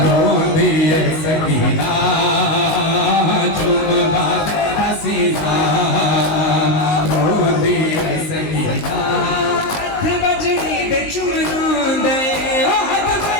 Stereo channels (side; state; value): right; late; 19 ms